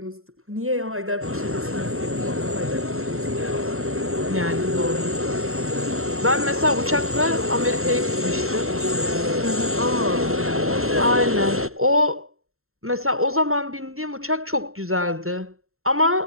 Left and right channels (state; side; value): late; left; 0.62 ms